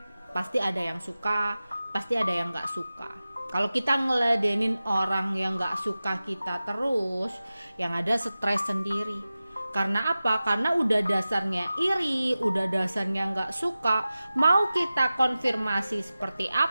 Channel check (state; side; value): inverted; both; correlation -0.96